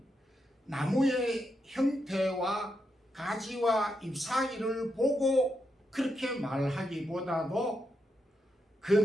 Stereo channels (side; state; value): both; normal; correlation 0.83